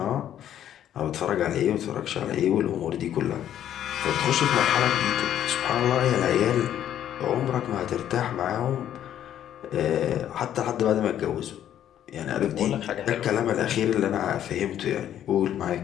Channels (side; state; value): right; quieter; 10.8 dB